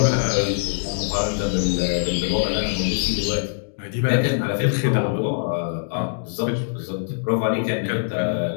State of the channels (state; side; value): silent; right; digital silence